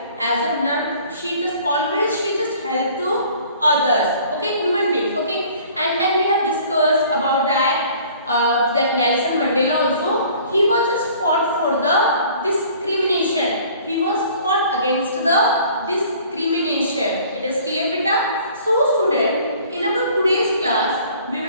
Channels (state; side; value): inverted; both; correlation -0.52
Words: as a nun. She just helped to others, okay, human beings, okay. And then we have discussed about that Nelson Mandela also, he was just fought for the discrimination. He was fought against the discrimination. It is clear, beta? So student, in our today's class, we